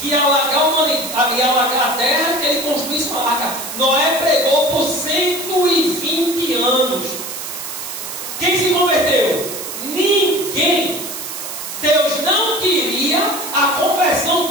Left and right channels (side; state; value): right; noise; hiss, 8 dB below the sound